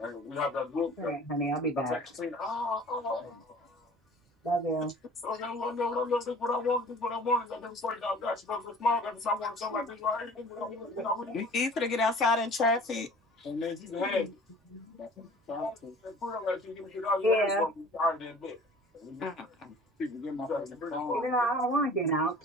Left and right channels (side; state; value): both; normal; correlation 0.47